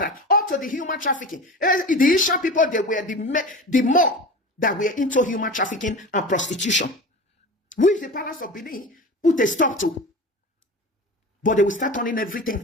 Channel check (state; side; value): normal; both; correlation 0.32